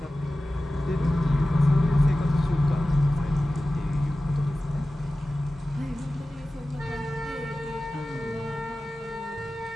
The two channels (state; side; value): normal; both; correlation 0.95